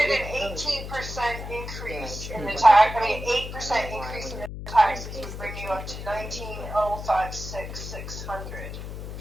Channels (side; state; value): left; noise; hum, 8 dB below the sound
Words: an 18% increase in the tax, 8% increase in the taxes would bring you up to 19,056,600.